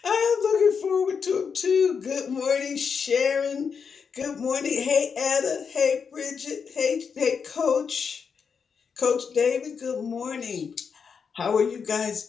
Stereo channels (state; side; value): quieter; right; 6.2 dB